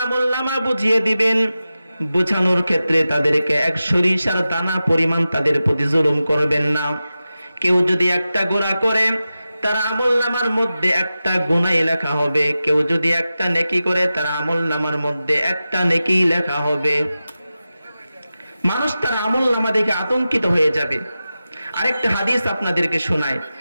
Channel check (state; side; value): inverted; both; correlation -0.94